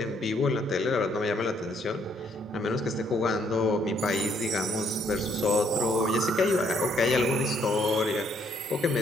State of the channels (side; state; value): both; normal; correlation 0.68